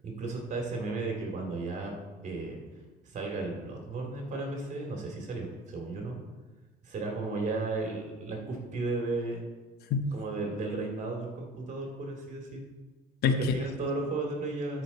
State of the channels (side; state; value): both; normal; correlation 0.41